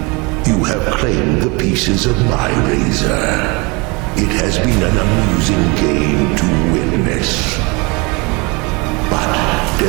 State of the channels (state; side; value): quieter; left; 27.9 dB